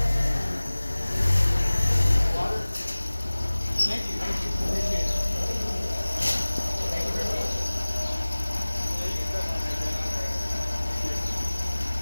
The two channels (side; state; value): both; inverted; correlation -1.00